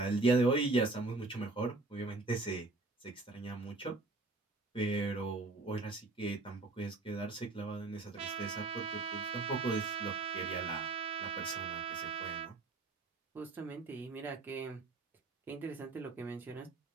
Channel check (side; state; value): left; quieter; 3.4 dB